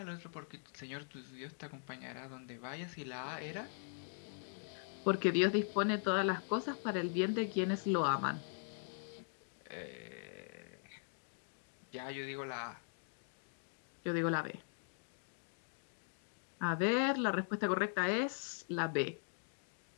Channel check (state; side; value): silent; right; digital silence